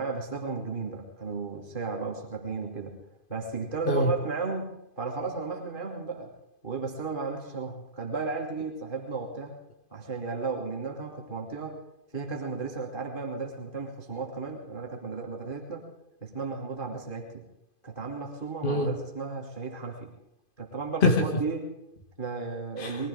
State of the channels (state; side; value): late; right; 2.5 ms